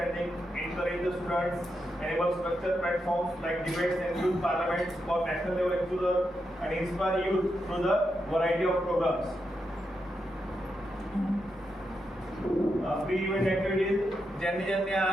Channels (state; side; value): normal; both; correlation 0.85